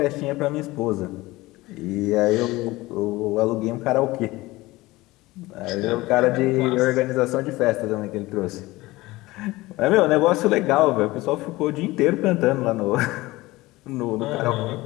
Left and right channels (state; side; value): quieter; right; 19.7 dB